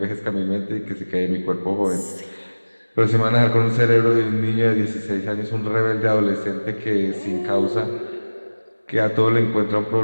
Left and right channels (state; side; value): inverted; both; correlation -1.00